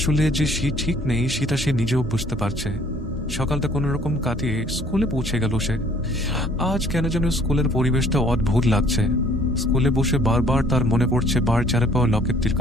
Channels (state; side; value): normal; both; correlation 0.58